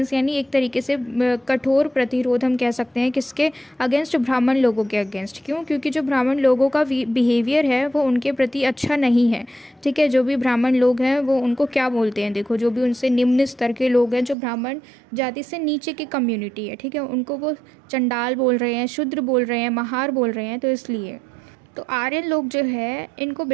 यानी एक तरीके से कठोर प्रतिरोध हम कह सकते हैं, किसके अगेंस्ट, ब्राह्मण लोगों के अगेंस्ट। क्यों? क्योंकि जो ब्राह्मण लोगों का बिहेवियर है वो उनके प्रति अच्छा नहीं है, ठीक है। जो भी ब्राह्मण लोग हैं वो उनको क्या बोलते हैं, देखो, जो भी उनसे निम्न स्तर के लोग हैं, जो ब्राह्मण जाति से नीचे की कम्युनिटी है, ठीक है, उनको वो चंडाल बोल रहे हैं, शूद्र बोल रहे हैं, महार बोल रहे हैं। तो इसलिए तो आर्यन लोग जो है इनको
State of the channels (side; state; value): left; drops out; at 14.4 s